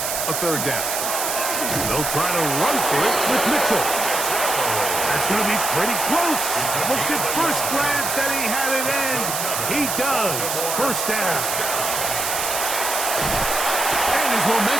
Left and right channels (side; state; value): right; noise; hiss, 2 dB below the sound